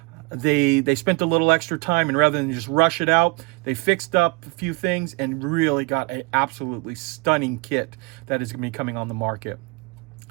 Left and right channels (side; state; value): left; quieter; 27.7 dB